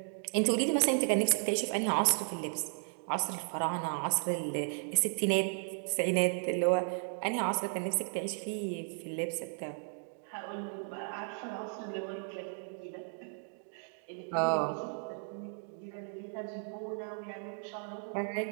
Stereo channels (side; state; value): left; silent; 55 dB below the other